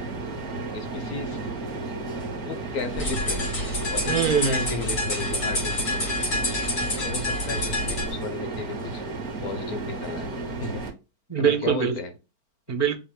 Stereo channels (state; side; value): late; right; 4.4 ms